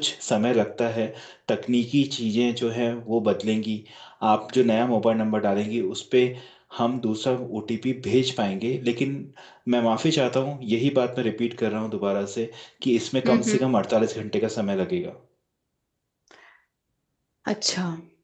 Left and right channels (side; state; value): both; identical; correlation 1.00